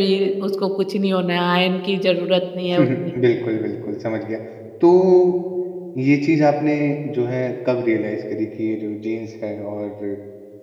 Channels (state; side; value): identical; both; correlation 1.00